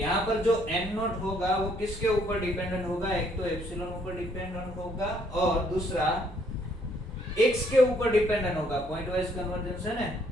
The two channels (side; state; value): both; normal; correlation 0.67